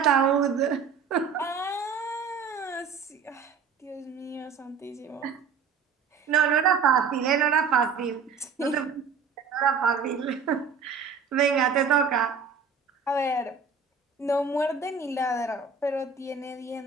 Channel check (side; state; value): left; quieter; 5.8 dB